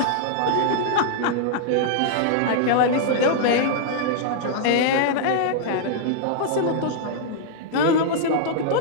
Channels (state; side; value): different; both; correlation -0.01